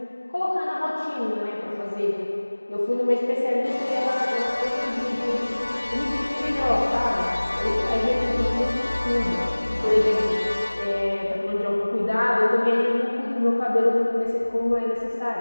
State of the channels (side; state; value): both; inverted; correlation -1.00